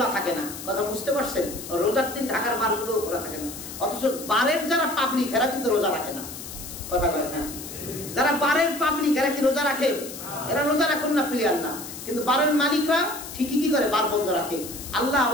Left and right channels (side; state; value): left; noise; hiss, 11 dB below the sound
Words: থাকে না, কথা বুঝতে পারছেন? রোজার দিন ঢাকার বারগুলো খোলা থাকে না, অথচ বারের যারা পাবলিক এরা কিন্তু রোজা রাখে না। কথা কয় না? যারা বারের পাবলিক এরা কি রোজা রাখে? এরা রোজা রাখুন না, প্লেয়ার না, কিন্তু বারের মালিকরা ঠিকই কি করে, বার বন্ধ রাখে। আল্লাহ